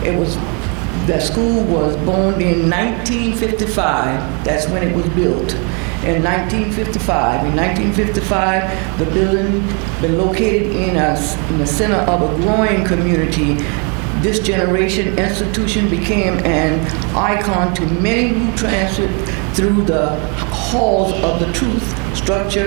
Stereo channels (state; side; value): quieter; left; 35.6 dB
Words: the school was born in 1955. That's when it was built. In 1955. In 1955, the building been located in the center of a growing community. This generation institution became an icon to many who transit through the halls of the truth,